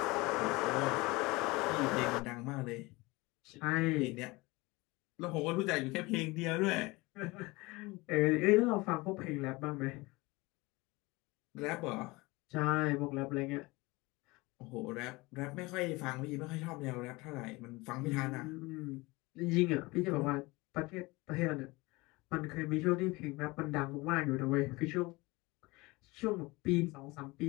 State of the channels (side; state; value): right; quieter; 23.1 dB